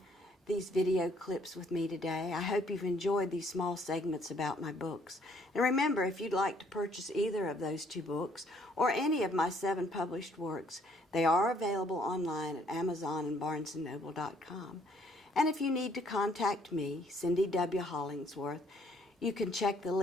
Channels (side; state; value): both; normal; correlation 0.64